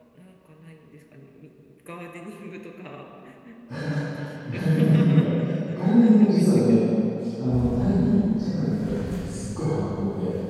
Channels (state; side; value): identical; both; correlation 1.00